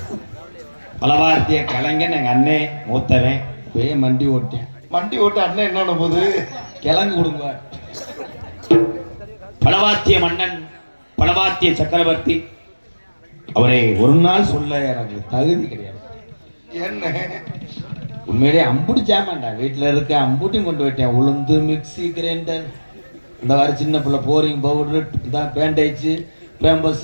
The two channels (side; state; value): both; inverted; correlation -1.00